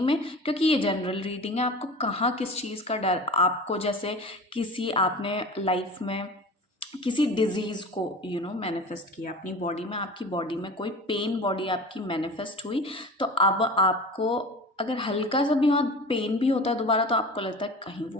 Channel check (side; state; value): both; normal; correlation 0.36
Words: में। क्योंकि ये जनरल रीडिंग है, आपको कहाँ किस चीज़ का डर, आपको जैसे किसी आपने लाइफ में किसी डिजीज़ को मैनिफेस्ट किया अपनी बॉडी में, आपकी बॉडी में कोई पेन बॉडी आपकी मैनिफेस्ट हुई, तो अब आपको अगर हल्का सा भी वहाँ पेन भी होता है दोबारा, तो आपको लगता है कहीं वो